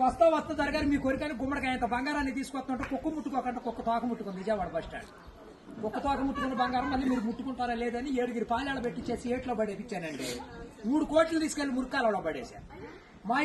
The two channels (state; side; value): identical; both; correlation 1.00